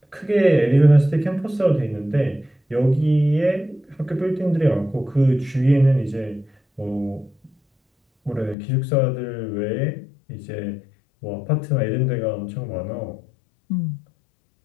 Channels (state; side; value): drops out; right; at 8.6 s